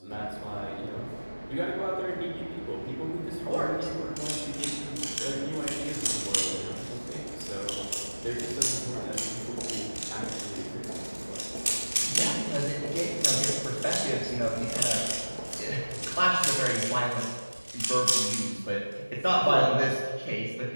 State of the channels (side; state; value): both; inverted; correlation -1.00